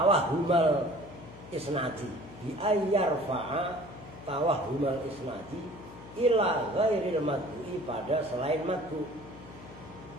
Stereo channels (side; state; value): left; noise; hum, 17 dB below the sound